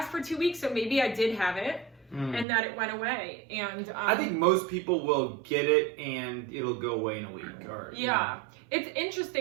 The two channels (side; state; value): left; drops out; at 2.5 s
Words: for 2 weeks, so maybe I did have it, and that it went away. And I think most people will get it, and it'll go away in a week. Or, yeah. You know. It's